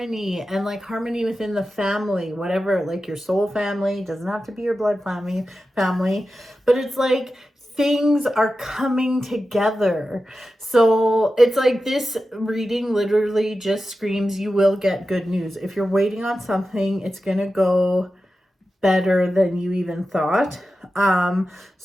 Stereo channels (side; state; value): both; normal; correlation 0.92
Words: and like harmony within the family, whatever, like your soul family, doesn't have to be your blood family, but it's like things are coming together. So it's like, this reading literally just screams, you will get good news. If you're waiting on something, it's going to go better than you even thought.